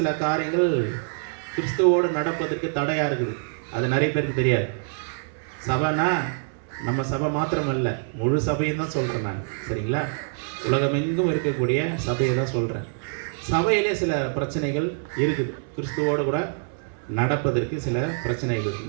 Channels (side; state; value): left; silent; 62 dB below the other